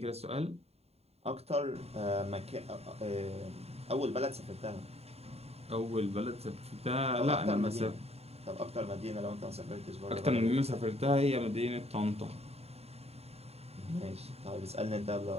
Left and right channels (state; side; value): late; left; 0.30 ms